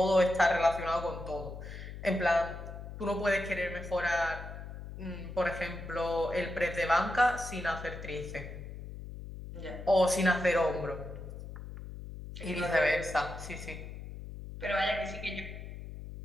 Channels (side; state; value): left; noise; hum, 11 dB below the sound